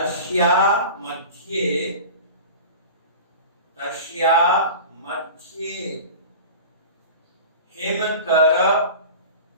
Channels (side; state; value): both; inverted; correlation -0.36